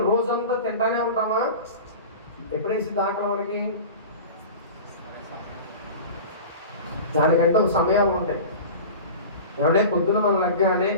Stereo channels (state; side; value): inverted; both; correlation -0.34